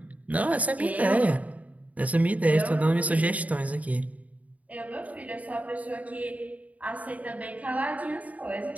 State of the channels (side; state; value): left; late; 0.071 ms